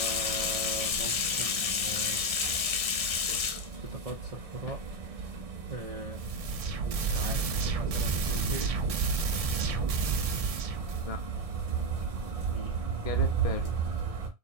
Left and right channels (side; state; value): left; late; 1.7 ms